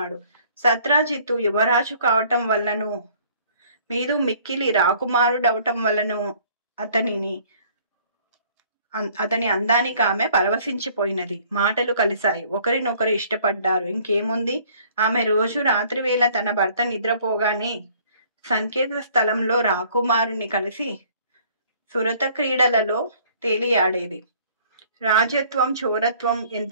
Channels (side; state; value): both; inverted; correlation -0.57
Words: సత్రాజిత్తు యువరాజు కావటం వల్లను, మీదు మిక్కిలి రాకుమారుడవటం వల్లను అతని అందానికి ఆమె పరవశించిపోయినది. మాటలు కలిశాయి. ఒకరినొకరు ఇష్టపడ్డారు. ఇంకేముంది, ఆమె రోజు రాత్రివేళ తన భర్త నిద్రపోగానే సంకేత స్థలంలో రాకుమారుని కలిసి సురత క్రీడలలో తేలియాడేది. రాజత్వం చోరత్వం